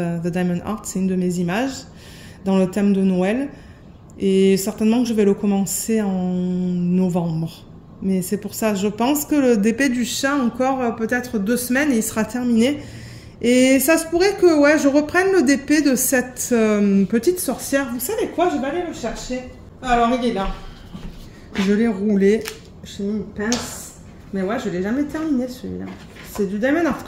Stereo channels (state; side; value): identical; both; correlation 1.00